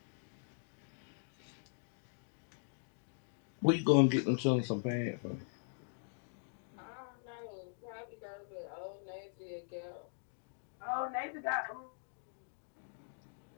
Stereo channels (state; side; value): silent; right; digital silence